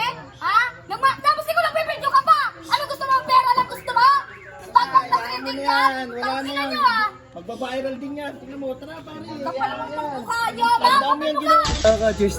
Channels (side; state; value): both; identical; correlation 1.00